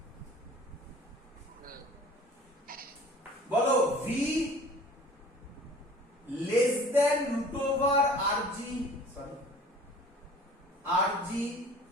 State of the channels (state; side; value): normal; both; correlation 0.47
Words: বলো V less than root over RG, sorry RG